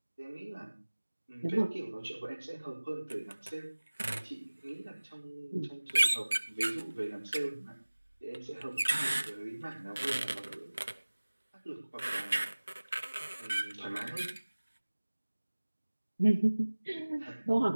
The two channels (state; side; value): inverted; both; correlation -1.00